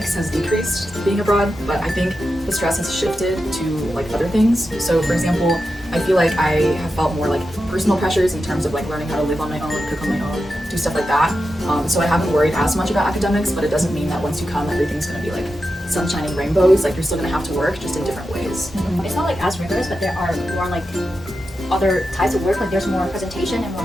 has decreased being abroad, but I think the stress has shifted to like other things. So for example, I feel like I have felt more like personal pressures in terms of like learning how to live on my own, cook on my own, do stuff like that. So I haven't worried as much about academics, but it doesn't mean that once you come, everything's gonna be like sunshine and rainbows. Like you're still gonna have to work, just in different ways. It's not like as rigorous, but there are more like other types of work. Like there's more presentation and more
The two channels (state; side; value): normal; both; correlation 0.90